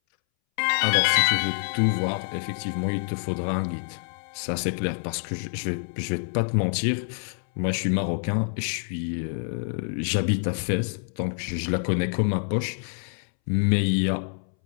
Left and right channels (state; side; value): silent; right; 61 dB below the other